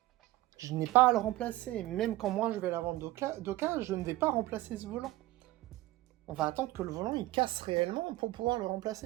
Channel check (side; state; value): left; quieter; 17.6 dB